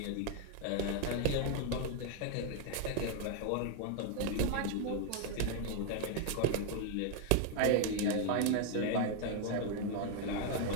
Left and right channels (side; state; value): both; different; correlation 0.00